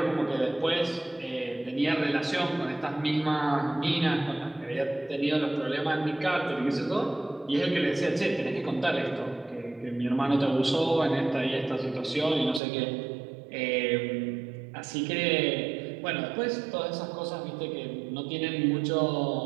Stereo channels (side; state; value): left; drops out; at 12.6 s